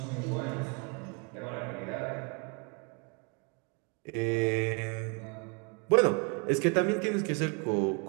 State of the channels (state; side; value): quieter; left; 34.0 dB